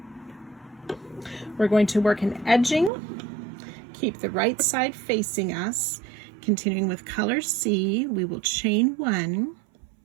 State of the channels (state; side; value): drops out; left; at 2.9 s